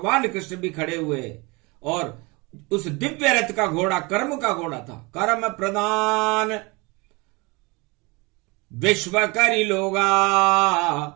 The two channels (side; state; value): left; quieter; 26.5 dB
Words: कृष्ण भी खड़े हुए, और उस दिव्य रथ का घोड़ा कर्म का घोड़ा था। कर्म प्रदान विश्व करी लोगा,